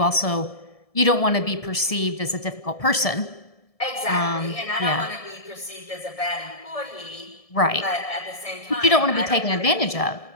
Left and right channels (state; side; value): late; right; 1.7 ms